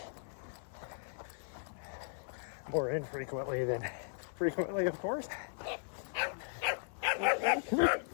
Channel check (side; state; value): right; silent; 53 dB below the other